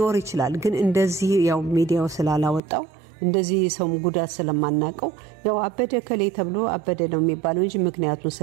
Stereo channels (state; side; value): drops out; left; at 2.6 s